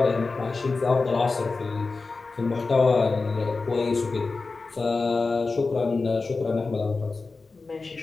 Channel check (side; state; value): right; quieter; 3.9 dB